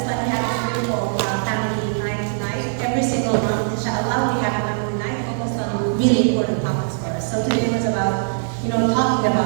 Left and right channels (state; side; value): silent; left; digital silence